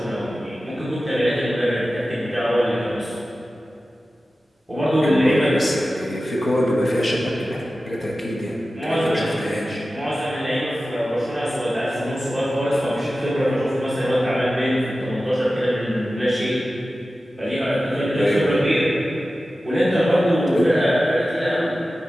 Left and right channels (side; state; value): both; normal; correlation 0.94